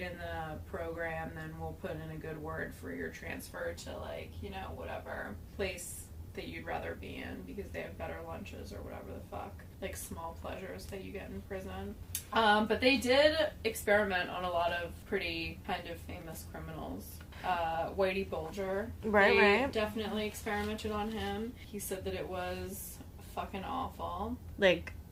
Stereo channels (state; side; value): identical; both; correlation 1.00